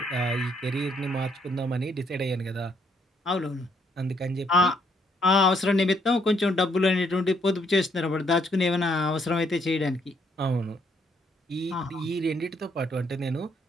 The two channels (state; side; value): normal; both; correlation 0.70